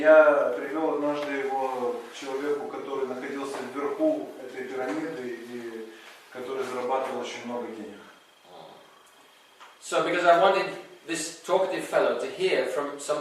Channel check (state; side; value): identical; both; correlation 1.00